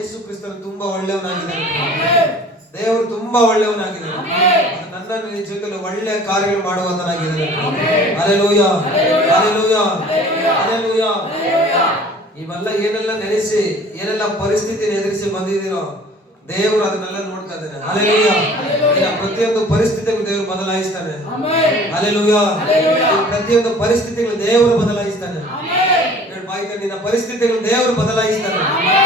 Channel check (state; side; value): normal; both; correlation 0.48